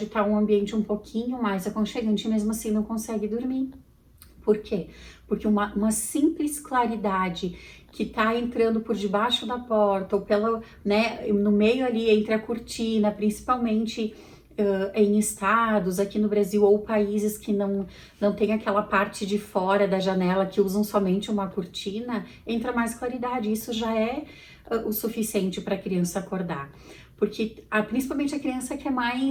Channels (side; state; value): both; identical; correlation 1.00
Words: estar um ambiente um pouquinho mais aconchegante, e mesmo assim não consegue dormir. Por quê? Porque uma simples claridade que tá entrando por debaixo da porta ou pela, né, no meio ali entre a cortina, principalmente em estados aqui no Brasil ou países que não tem aquela parte de fora da janela que usam somente uma cortina, entra mais claridade. Isso já é o suficiente para a criança acordar. Porque principalmente a criança que é